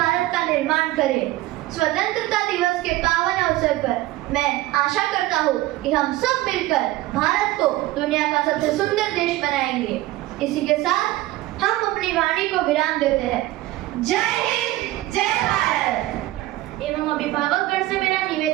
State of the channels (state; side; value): quieter; left; 16.9 dB